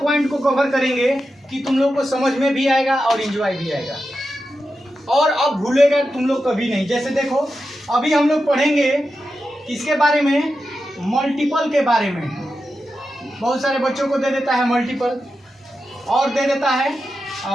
पॉइंट को कवर करेंगे कि तुम लोग को समझ में भी आएगा और एंजॉय भी आएगा और अब भूलेगा तुम लोग कभी नहीं। जैसे देखो अभी हम लोग पढ़ेंगे किसके बारे में, मल्टीपल के बारे में। बहुत सारे बच्चों को दे देता है मल्टीपल और दे देता है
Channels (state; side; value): normal; both; correlation 0.90